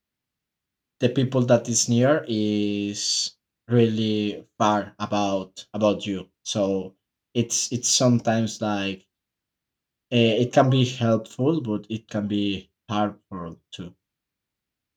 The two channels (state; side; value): identical; both; correlation 1.00